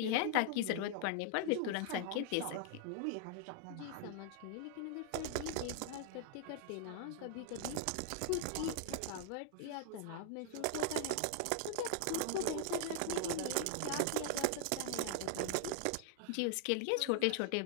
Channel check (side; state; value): both; different; correlation 0.00